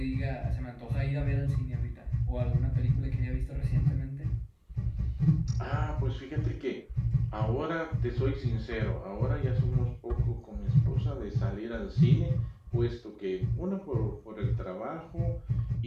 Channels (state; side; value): identical; both; correlation 1.00